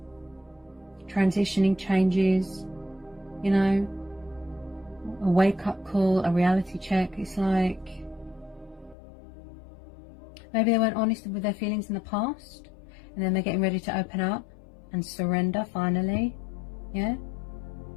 Transitioning changes. You know. A wake-up call, a reality check. It's like maybe they weren't honest with their feelings in the past, and then they're getting ready to open up and surrender finally. Yeah,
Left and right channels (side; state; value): right; drops out; at 9.0 s